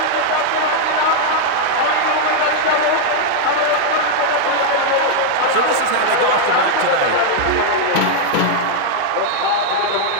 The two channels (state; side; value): different; both; correlation 0.00